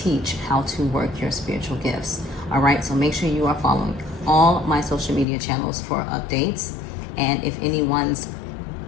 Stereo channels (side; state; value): right; drops out; at 5.2 s